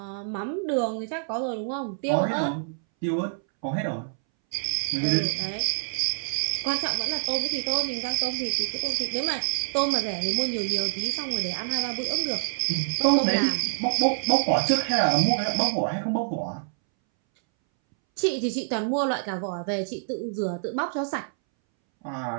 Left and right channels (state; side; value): silent; left; 61 dB below the other